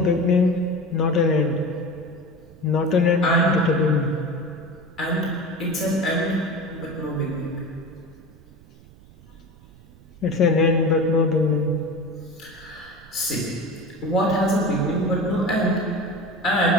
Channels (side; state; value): right; noise; rumble, 24 dB below the sound